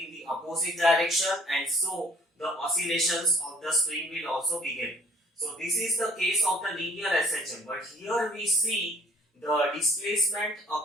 the opposite direction, and so the oscillations of the spring will also begin. So this is the case of the linear SHM, but here we see the displacement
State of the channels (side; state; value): both; normal; correlation 0.56